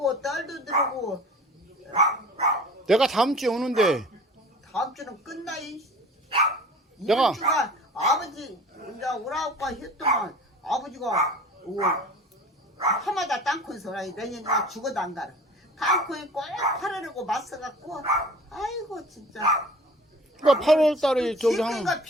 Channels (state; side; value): normal; both; correlation 0.43